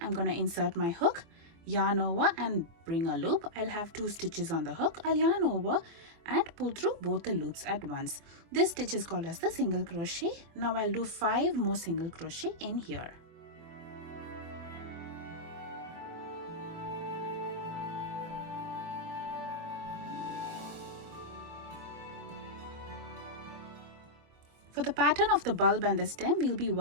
going to insert my hook, yarn over and bring a loop. I'll have 2 stitches on the hook. I'll yarn over and pull through both the loops at once. This stitch is called as the single crochet. Now I'll do 5 more single crochet in here. For the pattern of the bulb and the stem, we'll be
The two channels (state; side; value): late; left; 24 ms